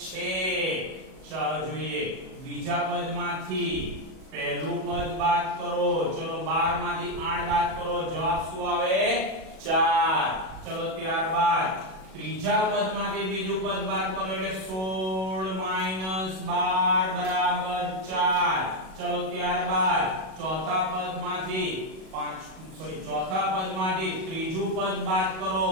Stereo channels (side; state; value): left; late; 37 ms